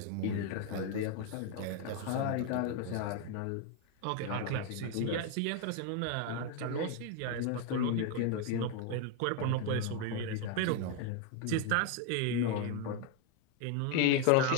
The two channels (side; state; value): both; different; correlation 0.01